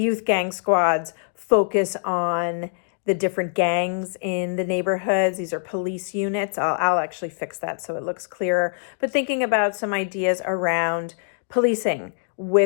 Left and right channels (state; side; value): silent; right; digital silence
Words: youth gang squads focus on the different gangs in the neighborhoods. These are police units. I'll actually fix that so it looks clearer. But thinking about some ideas around policing